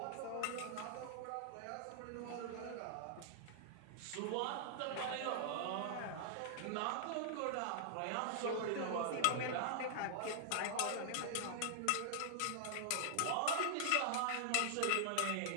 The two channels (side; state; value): both; different; correlation -0.01